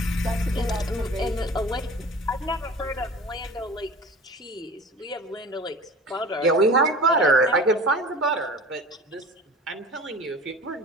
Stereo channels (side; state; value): both; normal; correlation 0.39